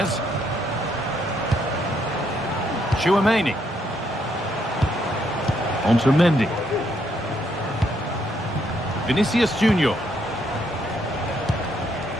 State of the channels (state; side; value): normal; both; correlation 0.73